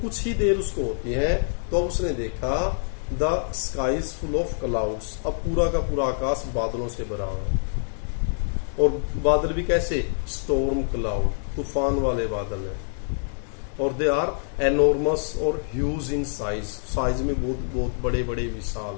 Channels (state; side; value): silent; right; 61 dB below the other